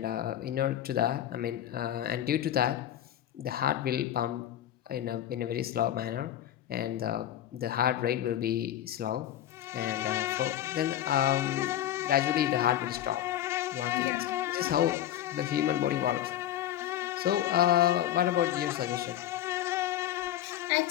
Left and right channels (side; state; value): right; quieter; 11.9 dB